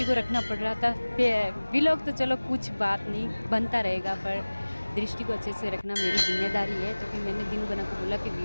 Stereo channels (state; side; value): inverted; both; correlation -1.00